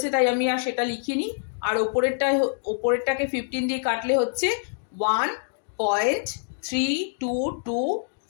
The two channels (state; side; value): silent; right; digital silence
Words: তাই আমি আর সেটা লিখিনি, আর ওপরেরটাকে 15 দিয়ে কাটলে হচ্ছে